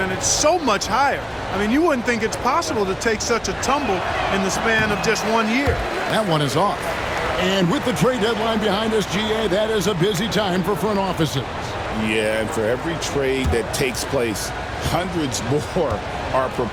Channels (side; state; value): both; identical; correlation 1.00